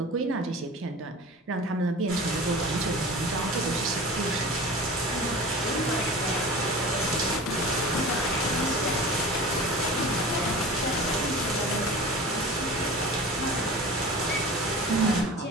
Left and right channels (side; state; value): both; normal; correlation 0.36